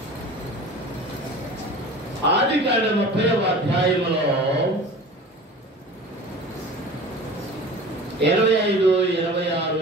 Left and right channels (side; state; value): both; normal; correlation 0.39